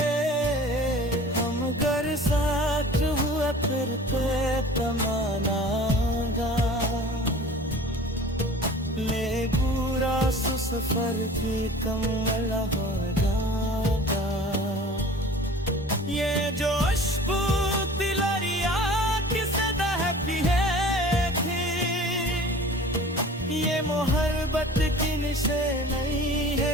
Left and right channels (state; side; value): normal; both; correlation 0.44